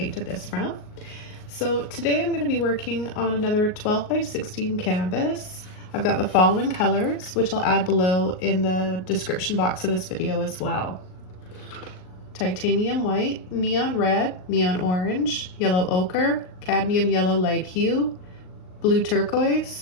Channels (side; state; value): right; late; 38 ms